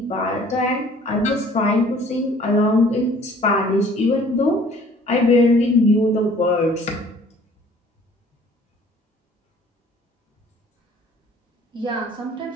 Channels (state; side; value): normal; both; correlation 0.54